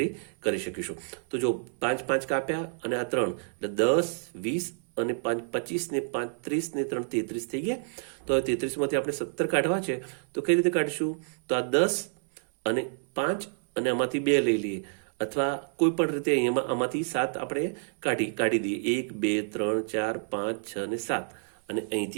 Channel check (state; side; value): silent; left; 59 dB below the other